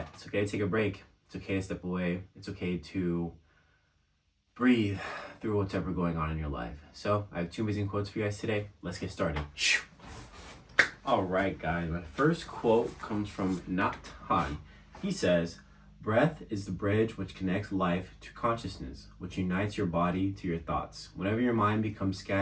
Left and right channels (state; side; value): identical; both; correlation 1.00